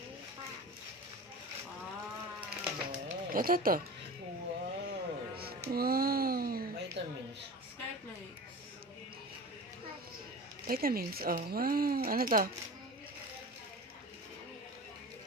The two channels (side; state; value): both; normal; correlation 0.33